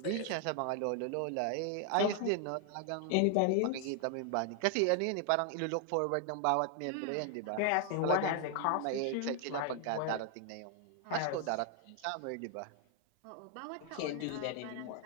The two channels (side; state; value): both; different; correlation 0.00